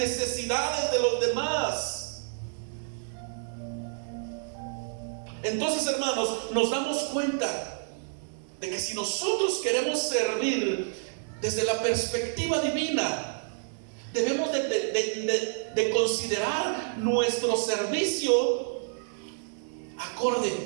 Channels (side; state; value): left; silent; digital silence